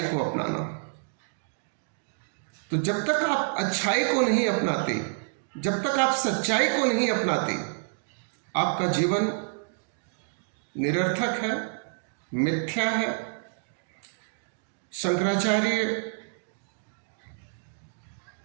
को अपनाना। तो जब तक आप अच्छाई को नहीं अपनाते, जब तक आप सच्चाई को नहीं अपनाते, आपका जीवन निरर्थक है, मिथ्या है। शंकराचार्य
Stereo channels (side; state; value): left; silent; digital silence